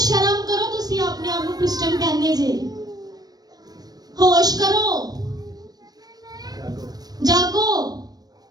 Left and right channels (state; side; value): late; left; 0.19 ms